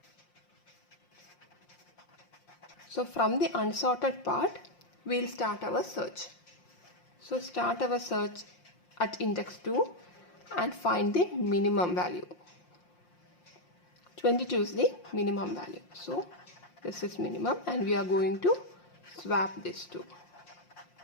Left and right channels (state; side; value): late; right; 5.7 ms